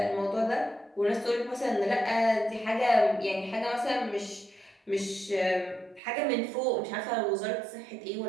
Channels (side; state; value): left; drops out; at 6.0 s